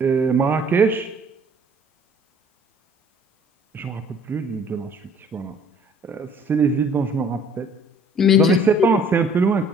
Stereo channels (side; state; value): both; normal; correlation 0.55